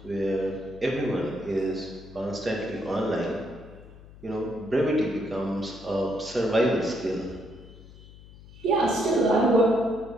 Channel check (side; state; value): left; noise; hum, 19 dB below the sound